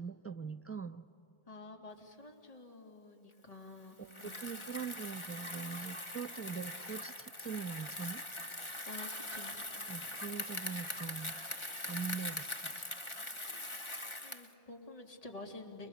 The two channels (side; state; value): right; late; 1.4 ms